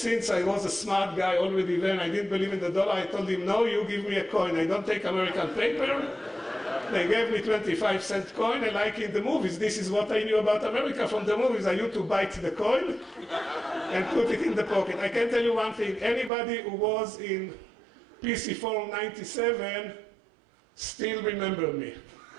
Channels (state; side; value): drops out; left; at 16.3 s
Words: I was a smart guy already then, I didn't believe in the dollar, I told him, no, you give me a coin. I don't take American paper. They gave me 25-cent coin, and like in the movies, this is what I knew about America from the movies. I used to bite the coin and put it in the pocket. I can tell you one thing. Anybody who was in PC Forum 97 still remember me.